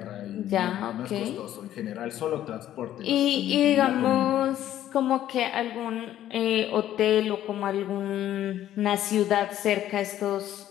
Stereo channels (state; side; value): quieter; right; 12.2 dB